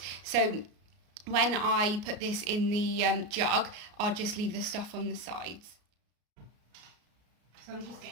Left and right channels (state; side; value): late; left; 33 ms